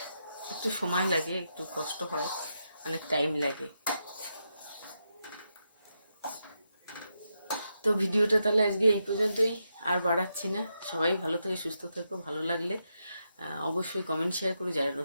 একটু সময় লাগে, একটু কষ্ট হয়, অনেক টাইম লাগে। তো ভিডিওটা তাহলে আজকে এই পর্যন্তই, আর বাড়াচ্ছি না। সবাই ভালো থেকে সুস্থ থেকো, ভালো লাগলে অবশ্যই কমেন্ট শেয়ার করো, যারা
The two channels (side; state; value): both; inverted; correlation -0.84